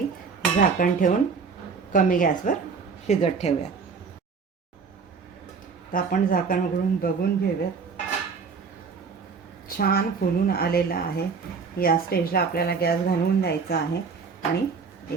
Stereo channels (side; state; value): left; quieter; 5.3 dB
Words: झाकण ठेवून कमी गॅसवर शिजत ठेवूयात. तर आपण झाकण उघडून बघून घेऊयात. छान फुलून आलेला आहे. या स्टेजला आपल्याला गॅस घालवून द्यायचा आहे आणि